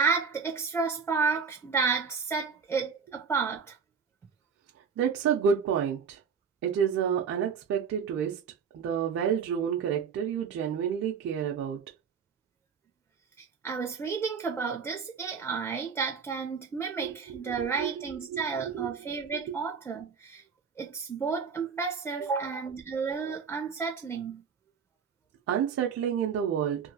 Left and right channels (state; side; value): quieter; left; 6.2 dB